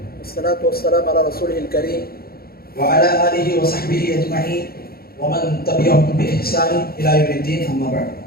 والصلاة والسلام على رسوله الكريم وعلى آله وصحبه أجمعين ومن تبعهم بإحسان إلى يوم الدين. أما بعد.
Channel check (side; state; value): right; late; 0.44 ms